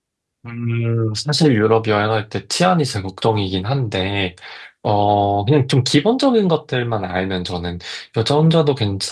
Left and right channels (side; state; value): both; identical; correlation 1.00